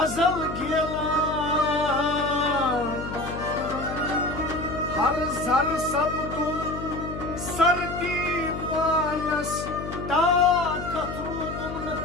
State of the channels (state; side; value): noise; left; hum, 8 dB below the sound